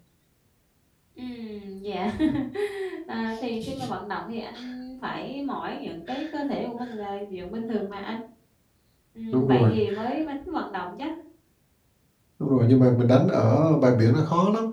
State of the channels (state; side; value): identical; both; correlation 1.00